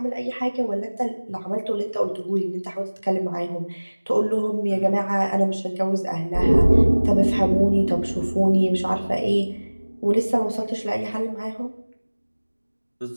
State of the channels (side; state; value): both; inverted; correlation -1.00